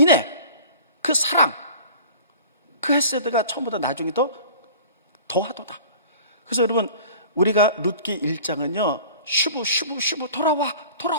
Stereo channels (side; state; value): both; inverted; correlation -0.44